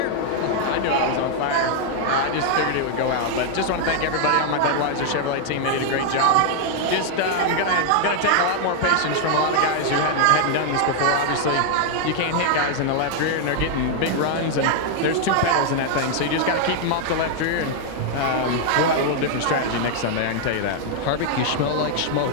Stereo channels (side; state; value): both; different; correlation 0.00